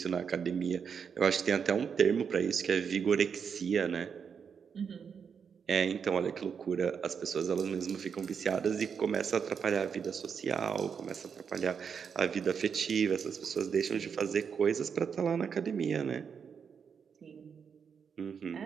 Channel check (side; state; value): left; quieter; 6.7 dB